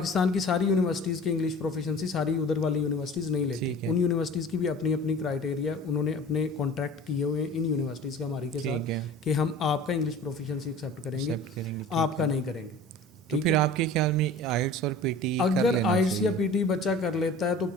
की सारी यूनिवर्सिटीज़ की इंग्लिश प्रोफिशिएंसी सारी उधर वाली यूनिवर्सिटीज़ नहीं लेती। ठीक है। उन यूनिवर्सिटीज़ की भी अपनी अपनी क्राइटेरिया, उन्होंने अपने कॉन्ट्रैक्ट किए हुए हैं इन यूनिवर्सिटीज़ का हमारी के साथ ठीक है, कि हम आपका इंग्लिश प्रोफिशिएंसी एक्सेप्ट करेंगे, एक्सेप्ट करेंगे, ठीक आपका है। नहीं करेंगे। तो ठीक फिर है? आपके ख्याल में आइट्स और पीटी अगर आइट्स या पीटी बच्चा कर लेता है तो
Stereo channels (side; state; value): both; normal; correlation 0.42